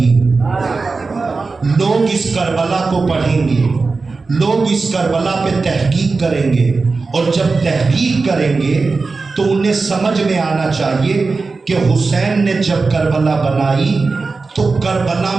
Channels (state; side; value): quieter; left; 4.1 dB